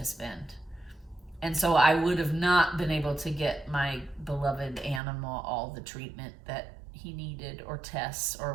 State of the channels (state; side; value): drops out; left; at 5.0 s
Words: spend. And so I would have not been able to get my beloved animal all the treatment that he needed, or tests or